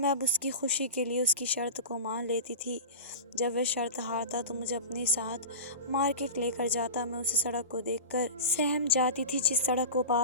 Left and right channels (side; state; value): both; inverted; correlation -0.30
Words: अब उसकी खुशी के लिए उसकी शर्त को मान लेती थी। जब वह शर्त हारता तो मुझे अपने साथ मार्केट लेकर जाता। मैं उस सड़क को देखकर सहम जाती थी जिस सड़क को